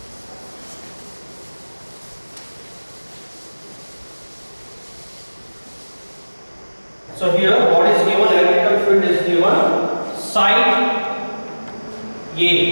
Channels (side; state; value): both; inverted; correlation -1.00